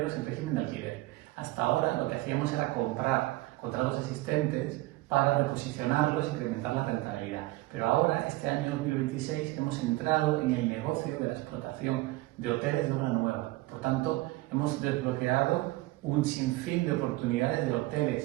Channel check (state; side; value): quieter; left; 19.6 dB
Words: en régimen de alquiler. Hasta ahora lo que hacíamos era comprar contratos existentes para reposicionarlos e incrementar la rentabilidad. Pero ahora, este año 2026, hemos entrado en el negocio de la explotación de hoteles de obra nueva. Por tanto, hemos desbloqueado un sinfín de oportunidades de